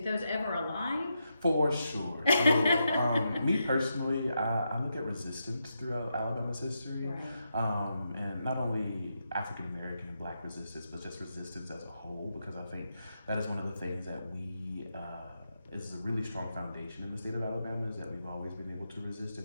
those ever align? For sure. So, me personally, I look at resistance throughout Alabama's history, Right. and not only African American and Black resistance, but just resistance as a whole, because I think that is one of the things that is a really strong foundation in the state of Alabama, is that we've always been able to resist in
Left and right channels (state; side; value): inverted; both; correlation -0.84